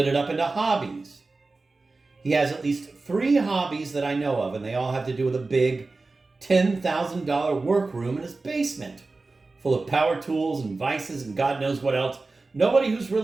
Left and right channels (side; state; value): left; quieter; 3.6 dB